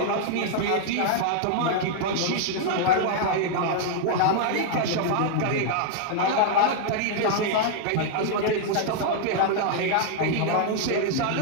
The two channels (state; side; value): different; both; correlation -0.01